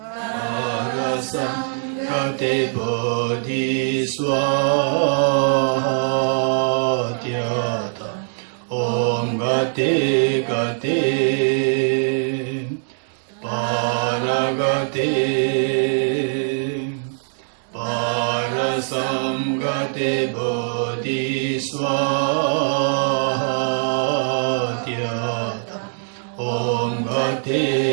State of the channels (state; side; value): silent; left; digital silence